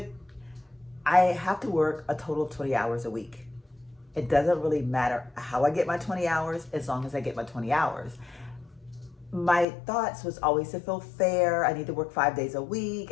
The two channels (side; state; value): right; drops out; at 9.7 s